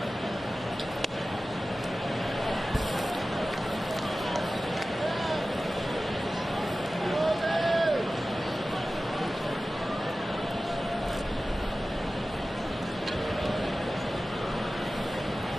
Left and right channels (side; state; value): both; normal; correlation 0.96